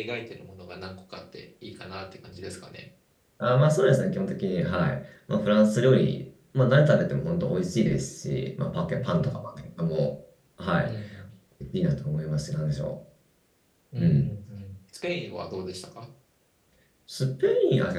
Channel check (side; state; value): both; identical; correlation 1.00